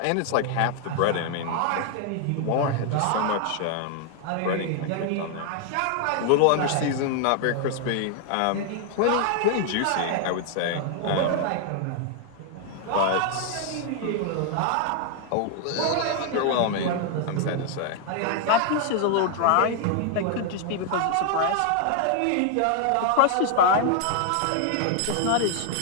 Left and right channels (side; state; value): both; different; correlation 0.00